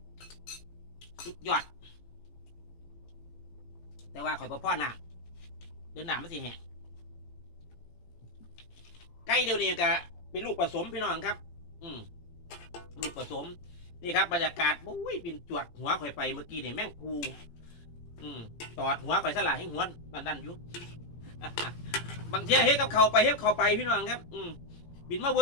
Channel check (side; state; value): right; late; 17 ms